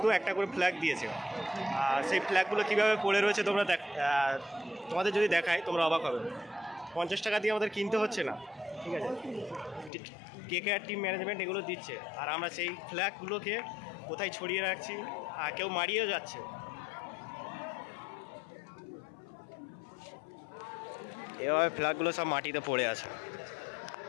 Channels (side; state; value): right; drops out; at 9.9 s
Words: একটা করে ফ্ল্যাগ দিয়েছে। সেই ফ্ল্যাগগুলো কীভাবে পড়ে রয়েছে তোমরা তোমাদের যদি দেখায় তোমরা অবাক হবে। 50 টাকা দিয়ে আমাদের কিনতে হচ্ছে না, ঠিক আছে, কেকেআর টিম ম্যানেজমেন্ট এগুলো দিচ্ছে, আর আমরা সেই ফ্ল্যাগগুলোকে কোথায় ছড়িয়ে রাখছি, কেউ মারিয়েও যাচ্ছে। এভাবে ফ্ল্যাগগুলো সব মাটিতে পড়ে আছে।